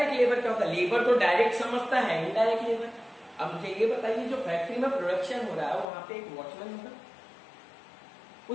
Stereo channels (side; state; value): right; drops out; at 5.9 s